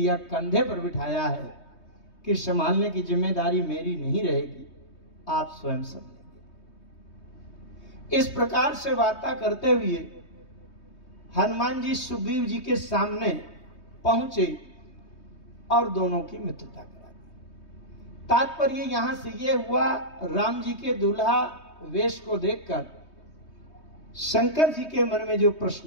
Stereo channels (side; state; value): right; late; 3.2 ms